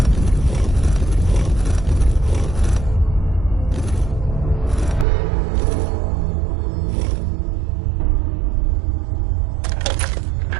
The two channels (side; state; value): left; drops out; at 5.1 s